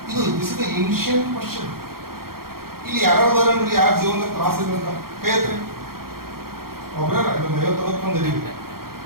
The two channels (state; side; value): late; left; 0.93 ms